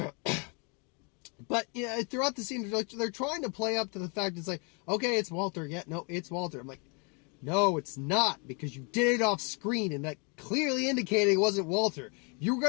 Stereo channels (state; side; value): quieter; right; 34.2 dB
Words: But throughout the scene, they're trying to play up to the fact it's like, okay, it's Walter. Yeah, no, it's Walter. I'm like, no, it's not, because you did it off screen, and that clearly indicated it wasn't Walter. If you were